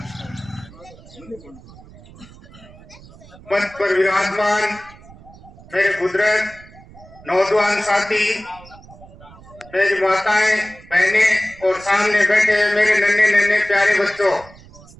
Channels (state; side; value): noise; right; rumble, 21 dB below the sound